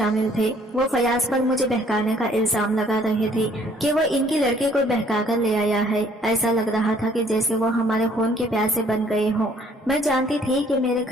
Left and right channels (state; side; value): normal; both; correlation 0.61